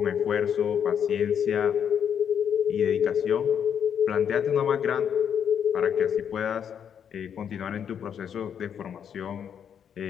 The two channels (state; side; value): quieter; right; 8.2 dB